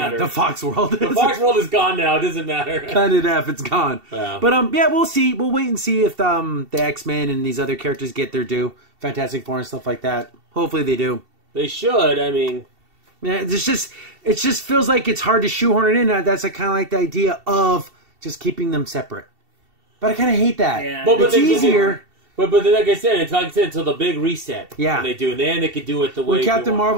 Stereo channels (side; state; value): left; late; 2.7 ms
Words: Yeah, the Fox world. The Fox world is gone now. It doesn't matter. Cut it off. It's gone. Yeah. But we'll see. We'll wait and see if the X-Men and these other characters get their due. Fantastic Four and stuff like that. Hopefully they do. They should. I mean. Yeah, it just feels like it's hard to shoehorn it in. That's kind of like the idea of just keeping them separate. But I kind of hate that. Yeah. It's easier. But like I said, until the big reset. Yeah. When they do, and then they can do it the way. When Captain